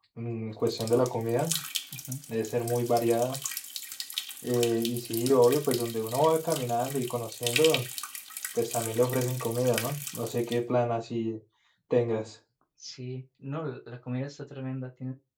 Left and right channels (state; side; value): identical; both; correlation 1.00